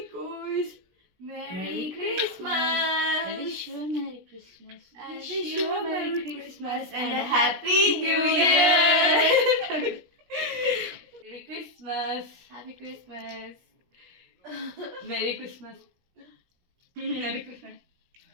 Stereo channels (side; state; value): left; late; 17 ms